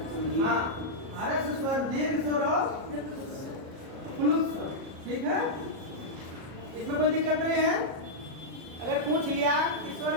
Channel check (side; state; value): left; late; 37 ms